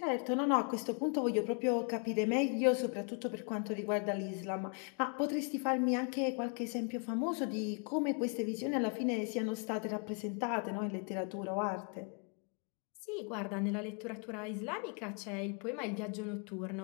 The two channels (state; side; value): quieter; right; 40.0 dB